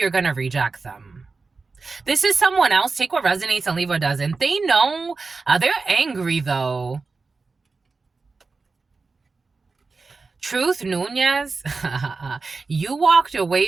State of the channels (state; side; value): quieter; left; 4.2 dB